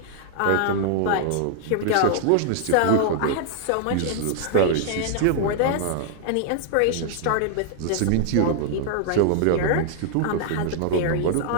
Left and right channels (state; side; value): different; both; correlation -0.01